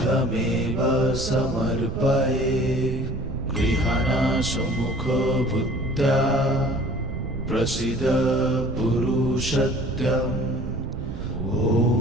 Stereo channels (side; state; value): right; noise; rumble, 6 dB below the sound